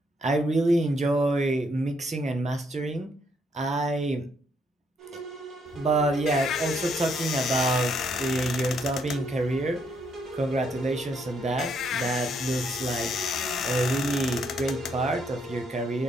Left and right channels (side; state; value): both; normal; correlation 0.72